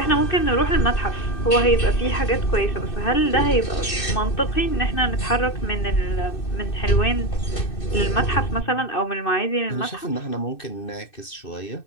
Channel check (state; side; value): late; right; 2.6 ms